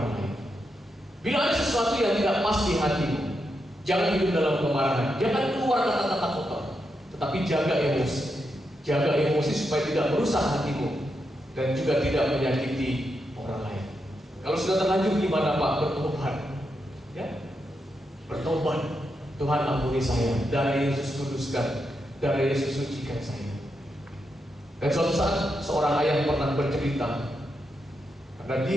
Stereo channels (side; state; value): both; normal; correlation 0.84